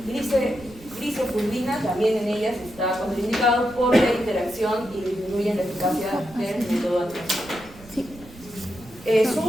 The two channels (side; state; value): right; noise; rumble, 21 dB below the sound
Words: glicofulvina, también en ellas está contraindicado por la interacción y disminuyen la eficacia del método anticonceptivo. Su